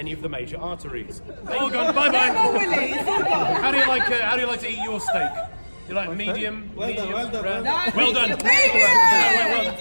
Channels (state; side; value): inverted; both; correlation -1.00